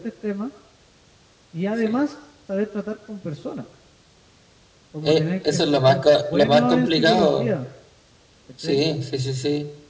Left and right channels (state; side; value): identical; both; correlation 1.00